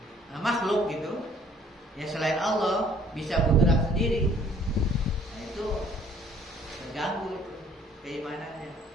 makhluk gitu, ya, selain Allah bisa bergerak sendiri, nah itu terganggu itu keimanannya,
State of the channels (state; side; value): normal; both; correlation 0.59